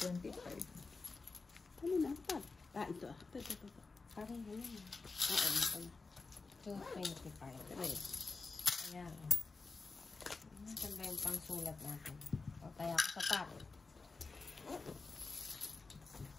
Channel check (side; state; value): right; quieter; 4.1 dB